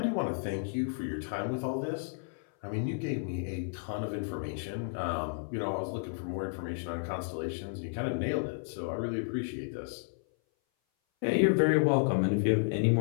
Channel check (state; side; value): silent; right; 56 dB below the other